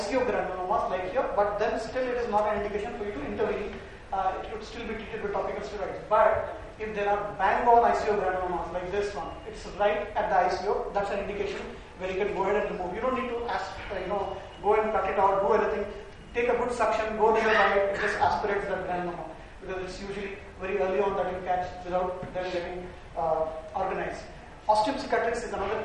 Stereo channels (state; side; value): identical; both; correlation 1.00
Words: granulomas like here, but then still it is not an indication for you to intervene. It could still be treated with topical steroids. But if there are bang-on ICO granulomas like this one, it's right at the ICO, that's an indication where you can go ahead and remove. You don't need to go and cut it out, do anything. Take a good suction, go nearby it, it just aspirates that granuloma, because it's usually very early on that you catch without them getting organized. Osteum cicatrix is